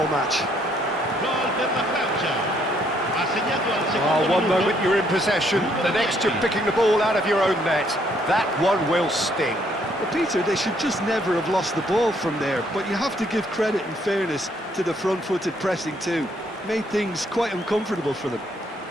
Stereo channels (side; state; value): both; normal; correlation 0.68